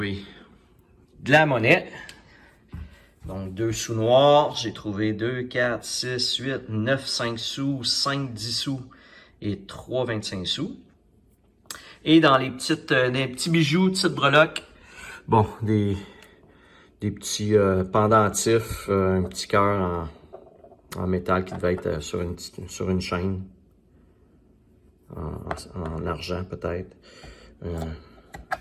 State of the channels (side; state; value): both; identical; correlation 1.00